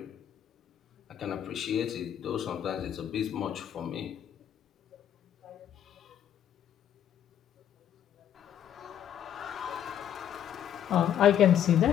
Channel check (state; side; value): quieter; right; 10.1 dB